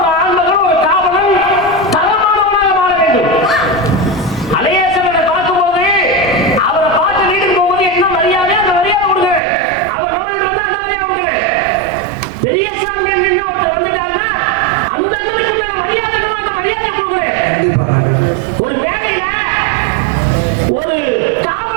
ஆண்மகன் ஒரு காவலன் தரமானவனாக மாற வேண்டும். அலையேசனை பார்க்கும்போது அவரை பார்த்து வீட்டுக்கு போகும்போது என்ன மரியாதை அந்த மரியாதை கொடுங்க. அவர் நம்ம வீட்டு வந்தா அந்த மரியாதை கொடுங்க. பெரியசாமி என்ன ஒருத்தர் வந்துட்டாருன்னா அந்த அண்ணனுக்கு உண்டான மரியாதை அந்த மரியாதையை கொடுக்குறேன். ஒரு வேலையில ஒரு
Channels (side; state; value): left; drops out; at 9.4 s